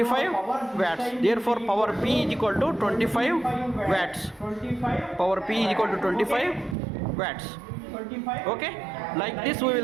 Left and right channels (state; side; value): drops out; left; at 6.8 s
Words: watts. Therefore power P is equal to 25 watts. Okay. Like this we